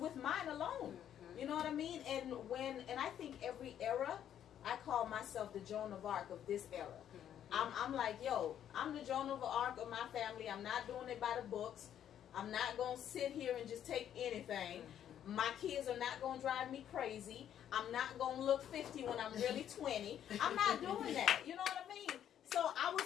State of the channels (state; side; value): quieter; right; 10.1 dB